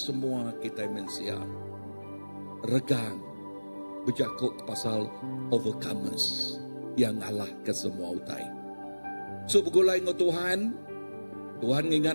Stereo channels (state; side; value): inverted; both; correlation -1.00